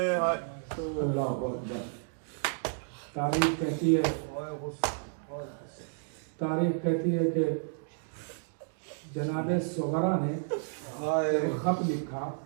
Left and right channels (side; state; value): left; silent; digital silence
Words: अल्लाह अकबर। तारीख कहती है कि जनाबे सुगरा ने खत लिखा